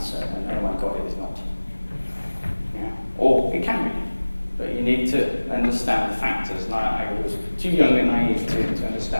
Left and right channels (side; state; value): both; inverted; correlation -1.00